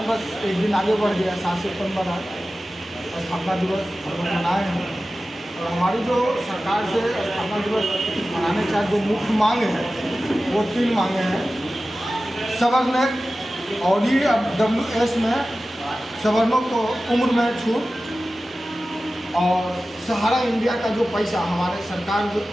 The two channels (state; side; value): normal; both; correlation 0.95